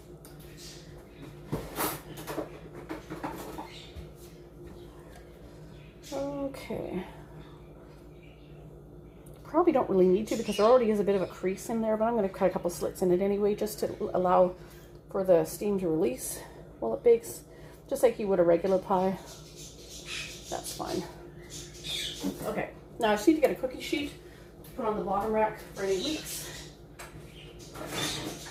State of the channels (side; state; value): both; identical; correlation 1.00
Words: Okay. Probably don't really need to because there already is a bit of a crease in there, but I'm going to cut a couple slits in it anyway just to allow for the steam to release while it bakes, just like you would a regular pie. That's fine. Okay, now I just need to get a cookie sheet to put on the bottom rack for any leaks.